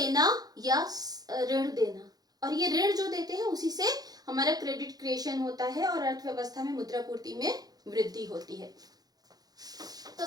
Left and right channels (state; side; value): late; left; 0.19 ms